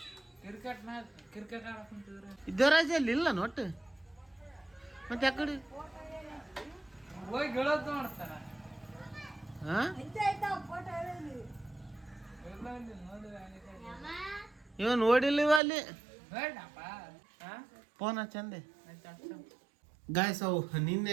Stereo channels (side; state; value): left; drops out; at 15.6 s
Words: ಇದ್ದವರಾಜ ಅಲ್ಲಿ ಇಲ್ಲ ನೋಟ್ಟು. ಮತ್ತೆ ಯಾಕಡೆ ಹಾಂ ಇವ ನೋಡಿಲ್ಲ ಇವ ಅಲ್ಲಿ. ಫೋನ್ ಚಂದೆ ಗಾಯ್ಸ್. ಅವು